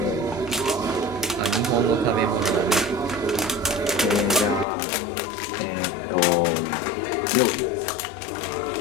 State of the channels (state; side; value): drops out; right; at 4.7 s